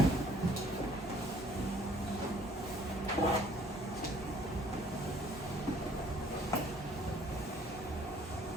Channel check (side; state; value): both; normal; correlation 0.58